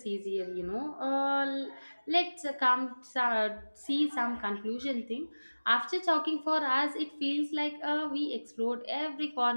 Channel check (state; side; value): inverted; both; correlation -1.00